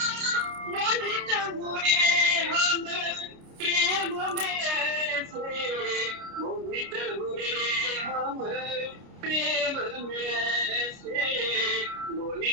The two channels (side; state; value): left; late; 29 ms